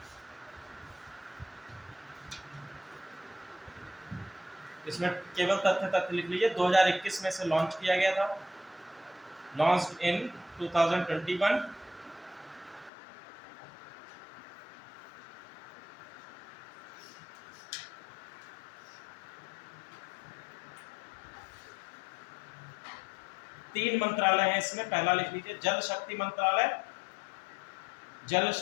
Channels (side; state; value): right; drops out; at 12.9 s